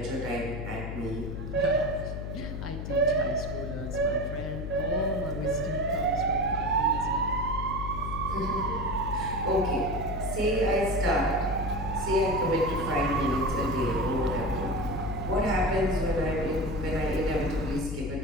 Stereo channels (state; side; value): noise; left; hum, 5 dB below the sound